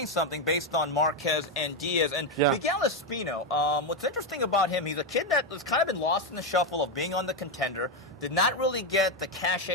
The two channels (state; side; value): normal; both; correlation 0.07